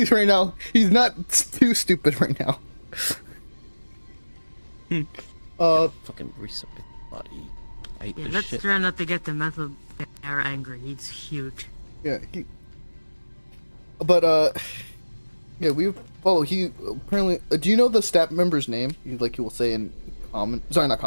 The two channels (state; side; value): inverted; both; correlation -1.00